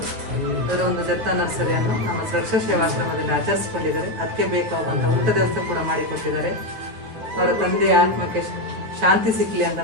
ಅದರ ಒಂದು ದತ್ತ ನರ್ಸರಿಯನ್ನು ನಮ್ಮ ಸುರಕ್ಷಾ ಸೇವಾಶ್ರಮದಲ್ಲಿ ಆಚರಿಸಿಕೊಂಡಿದ್ದಾರೆ. ಅದಕ್ಕೆ ಬೇಕಾಗುವಂಥ ಊಟದ ವ್ಯವಸ್ಥೆ ಕೂಡ ಮಾಡಿಕೊಟ್ಟಿದ್ದಾರೆ. ಅವರ ತಂದೆಯ ಆತ್ಮಕ್ಕೆ ಶಾಂತಿ ಸಿಕ್ಕಲಿ ಅಂತ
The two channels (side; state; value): left; late; 8.9 ms